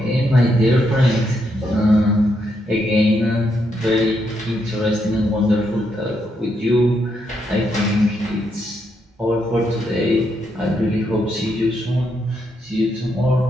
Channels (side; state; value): both; normal; correlation 0.78